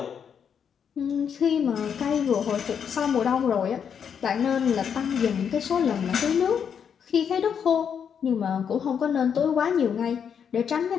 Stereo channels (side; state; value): right; quieter; 7.5 dB